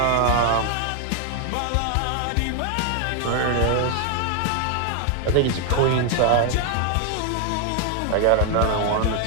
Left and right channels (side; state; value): both; different; correlation 0.00